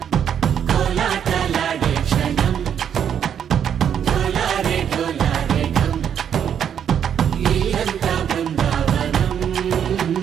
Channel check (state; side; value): quieter; left; 8.7 dB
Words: కోలాటలాడే క్షణం. ఢోలారే ఢోలారే ఢమ్, ఇల్లంతా బృందావనం,